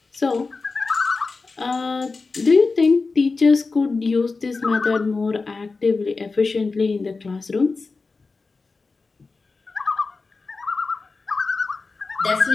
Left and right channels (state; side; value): quieter; right; 4.1 dB